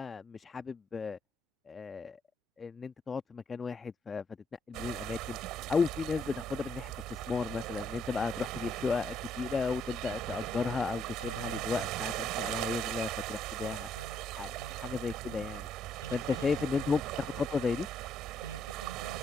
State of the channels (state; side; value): normal; both; correlation 0.70